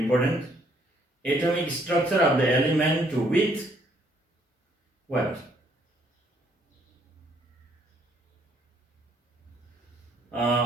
Atomic structure of the element with what?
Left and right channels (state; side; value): normal; both; correlation 0.66